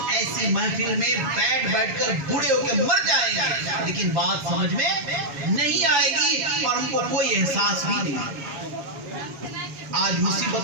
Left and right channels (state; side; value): late; left; 7.2 ms